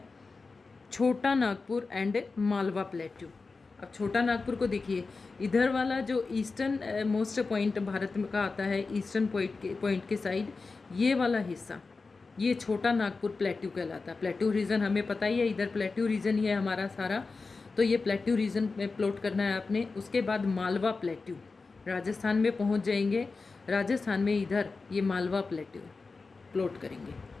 छोटा नागपुर एंड मालवा प्लेट्यू। अब छोटा नागपुर को देखिए, इधर वाला जो ईस्टर्न मोस्ट पॉइंट भारत में का आता है, ईस्टर्न पॉइंट के साइड, ये वाला हिस्सा ये छोटा नागपुर प्लेट्यू कहलाता है। प्लेट्यू रीजन हमें पता ही है, इधर प्लेट्यू रीजन ही है हमारा सारा, तो ये प्लेट्यू रीजन में प्लॉट करना है आपने। उसके बाद मालवा प्लेट्यू, राजस्थान में पहुंच जाएंगे, राजस्थान में इधर ये मालवा प्लेट्यू प्लॉट करेंगे।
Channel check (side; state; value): right; quieter; 4.1 dB